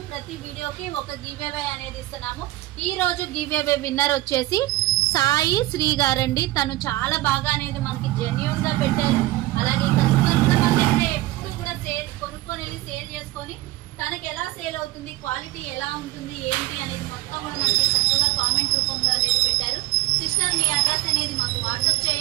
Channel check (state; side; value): quieter; left; 17.6 dB